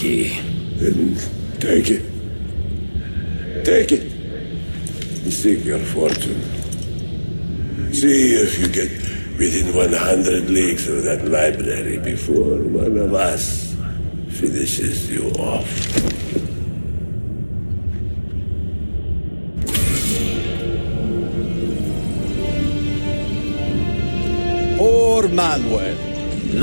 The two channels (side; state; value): both; inverted; correlation -1.00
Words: Then take it. Take it. And seek your fortune. See if you get within 100 leagues of that library before one of us finishes you off. Poor Manuel,